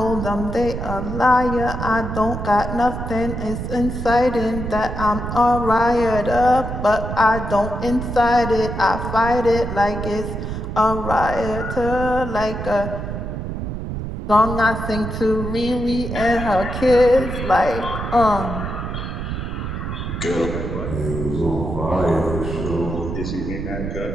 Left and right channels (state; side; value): noise; right; rumble, 5 dB below the sound